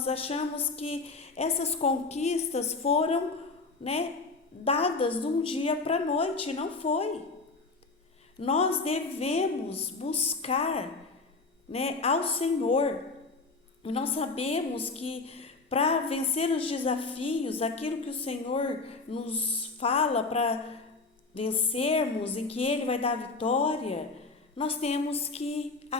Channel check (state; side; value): quieter; right; 3.9 dB